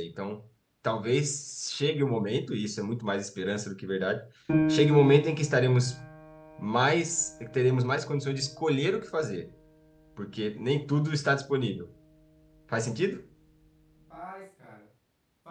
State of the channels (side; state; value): both; identical; correlation 1.00